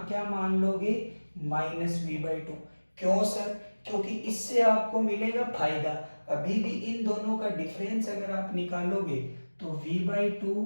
क्या मान लोगे -V/2। क्यों सर? क्योंकि इससे आपको मिलेगा फायदा। अभी भी इन दोनों का डिफरेंस अगर आप निकालोगे तो V/2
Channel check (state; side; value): inverted; both; correlation -1.00